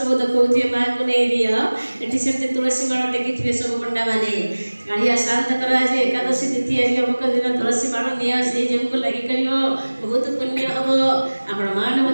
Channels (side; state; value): both; inverted; correlation -1.00